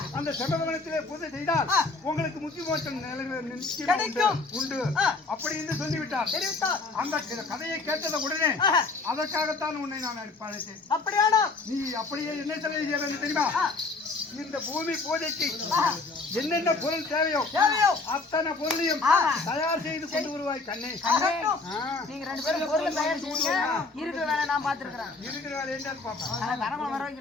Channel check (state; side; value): quieter; right; 3.8 dB